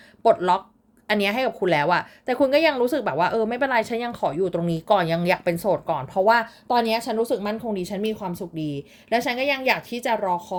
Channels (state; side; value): identical; both; correlation 1.00